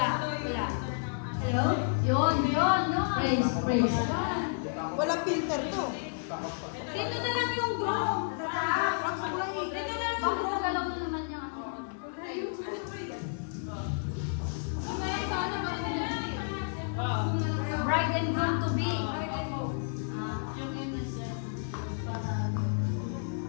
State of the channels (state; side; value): silent; right; digital silence